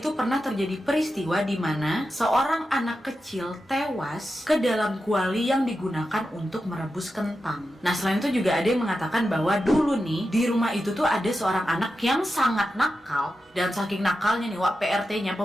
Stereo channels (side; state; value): both; normal; correlation 0.90